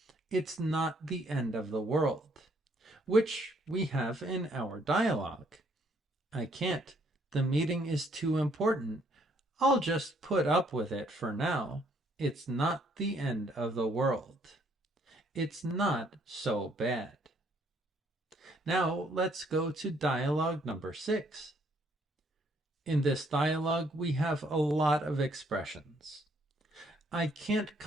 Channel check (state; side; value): normal; both; correlation 0.67